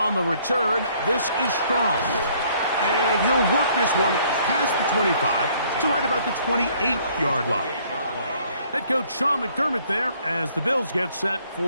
the return, this is Strong. And he'll work this one past the 25 to right about the 28-yard line. Head coach Sean McDermott there as the Bills get set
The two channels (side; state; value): both; inverted; correlation -0.62